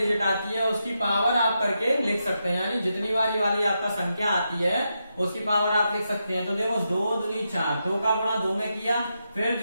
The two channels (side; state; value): both; inverted; correlation -0.85